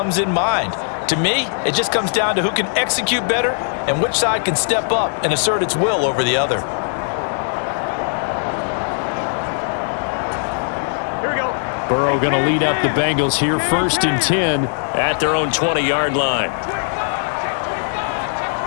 in mind. To me, it just comes down to who can execute better and which side can step up and assert its will over the other. Burrow going to lead up the Bengals here, 1st and 10 at their own 20-yard line.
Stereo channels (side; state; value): right; silent; digital silence